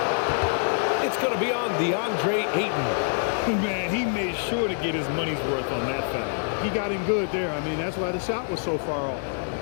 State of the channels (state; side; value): silent; right; digital silence